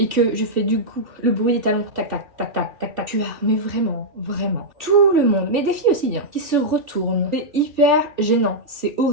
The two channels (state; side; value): late; left; 2.7 ms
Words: que je fais du coup le bruit des talons, tac tac tac tac tac tac, tu as, mais vraiment, tout le monde, mais des filles aussi, hein, qui se retournent. C'est hyper gênant, c'est